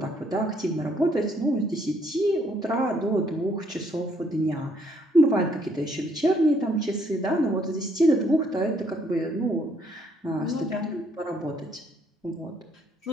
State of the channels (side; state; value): both; normal; correlation 0.68